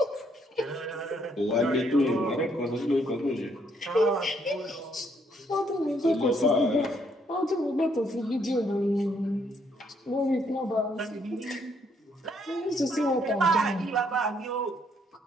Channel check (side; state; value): both; normal; correlation 0.70